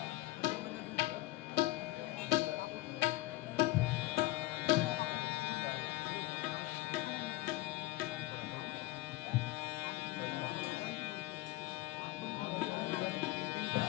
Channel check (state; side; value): quieter; right; 18.7 dB